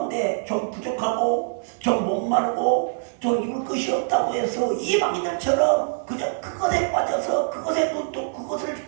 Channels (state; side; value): silent; left; digital silence